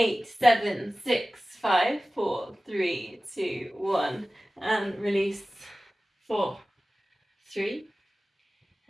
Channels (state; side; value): normal; both; correlation 0.97